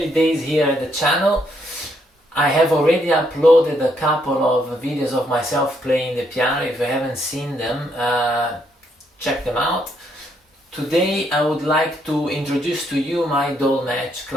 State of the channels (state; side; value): normal; both; correlation 0.73